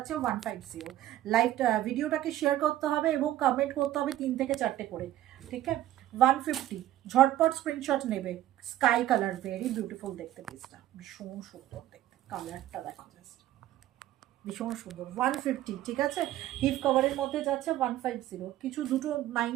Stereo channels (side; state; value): left; quieter; 13.5 dB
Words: 150। লাইভ ভিডিওটাকে শেয়ার করতে হবে এবং কমেন্ট করতে হবে 3 থেকে 4টে করে, ঠিক আছে? 150, ঝটপট স্ক্রিনশট নেবে। স্কাই কালার, ভেরি বিউটিফুল দেখতে পিসটা, ভীষণ সুন্দর দেখতে, কালারটা দেখো জাস্ট ভীষণ সুন্দর। 150, ঠিক আছে? হিপ কভারের মধ্যে যাচ্ছে 150। কিছু দুটো